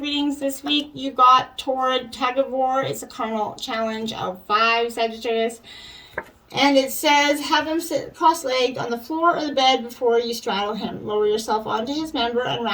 readings this week, you got Torrid Tug of War. It's a carnal challenge of 5, Sagittarius. And it says, have him sit cross-legged on the floor or the bed before you straddle him. Lower yourself onto his member and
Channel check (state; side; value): identical; both; correlation 1.00